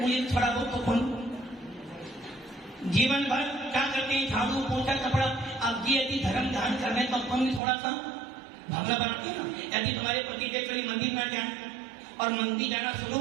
थोड़ा बहुत तो करूं। जीवन भर क्या करते हैं, झाड़ू पोछा कपड़ा। अब जी यदि धर्म ध्यान करने तो अपन भी थोड़ा सा भावना बनाते हैं ना। यदि तुम्हारे पति देव कभी मंदिर ना जाए और मंदिर जाना शुरू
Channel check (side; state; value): left; drops out; at 7.6 s